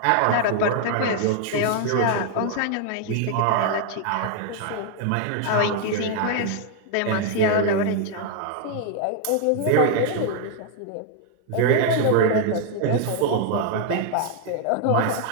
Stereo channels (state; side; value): different; both; correlation 0.00